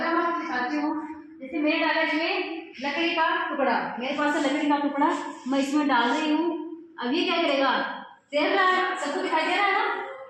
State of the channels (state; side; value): identical; both; correlation 1.00